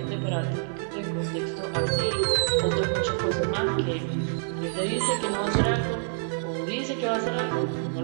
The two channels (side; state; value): left; silent; digital silence